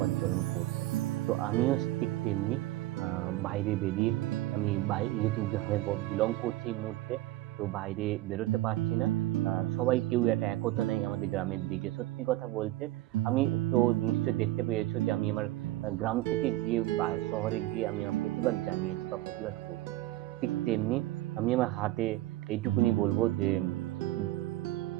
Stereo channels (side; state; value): left; quieter; 16.4 dB